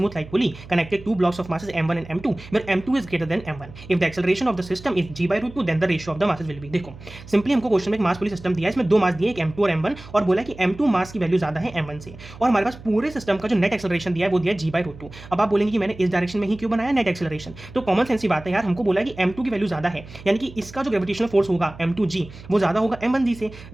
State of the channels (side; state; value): right; noise; hum, 17 dB below the sound